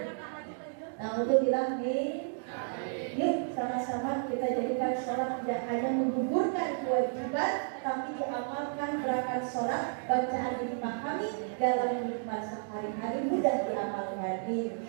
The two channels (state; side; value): silent; left; digital silence